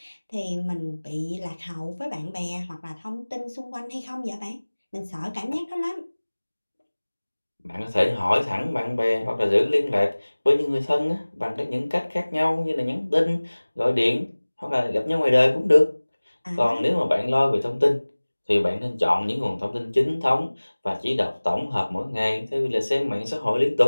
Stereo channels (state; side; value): inverted; both; correlation -1.00